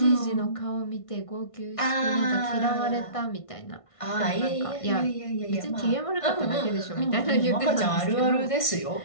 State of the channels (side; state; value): right; late; 1.5 ms